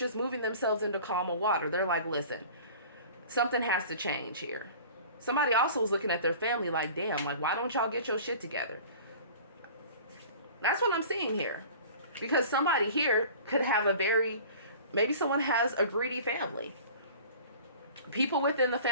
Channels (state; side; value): inverted; both; correlation -0.43